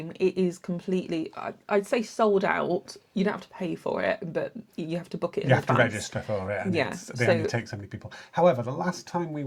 It is completely, I'd say, sold out. You don't have to pay for it, but you have to book it in You have to advance. register for it, and Yeah, they only take so many people. However, the last time we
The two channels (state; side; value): identical; both; correlation 1.00